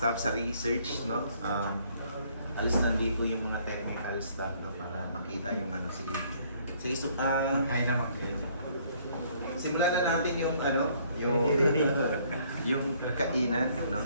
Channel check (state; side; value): inverted; both; correlation -0.63